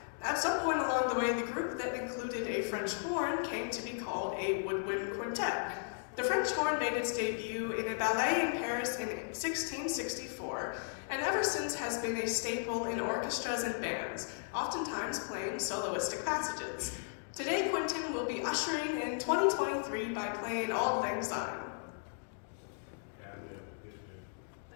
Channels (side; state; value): right; silent; digital silence